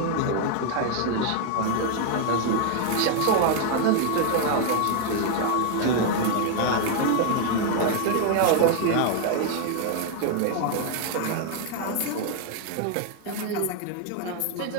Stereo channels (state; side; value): different; both; correlation 0.00